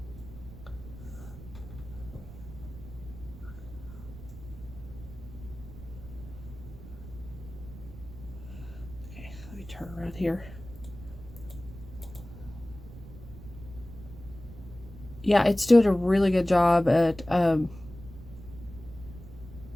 Turn around here. Yeah, it's doing a really good job at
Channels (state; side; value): noise; right; rumble, 15 dB below the sound